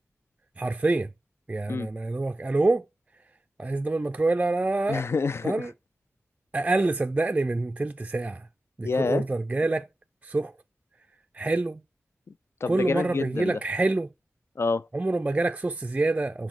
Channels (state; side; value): normal; both; correlation 0.92